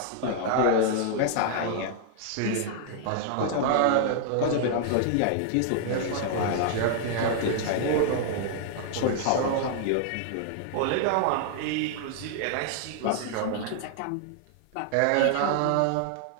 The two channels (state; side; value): different; both; correlation 0.00